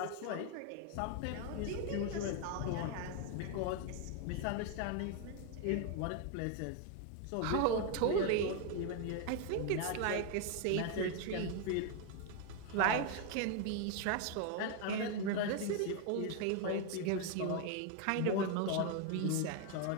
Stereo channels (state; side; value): different; both; correlation 0.01